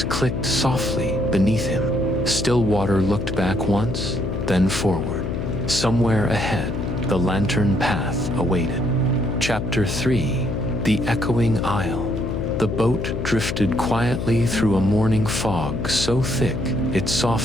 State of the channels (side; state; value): left; noise; hum, 3 dB below the sound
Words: clicked softly beneath him. Stillwater looked back once, then forward. Somewhere ahead, the lantern path awaited. Chapter 3: The Echoing Isle. The boat drifted quietly through a morning fog so thick it